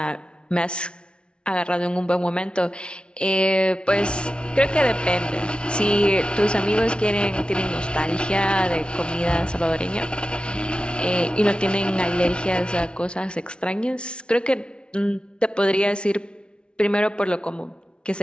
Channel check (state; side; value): late; right; 0.057 ms